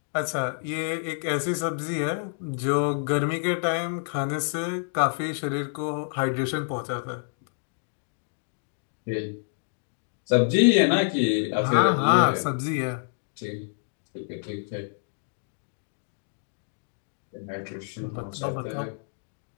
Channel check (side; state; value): right; silent; digital silence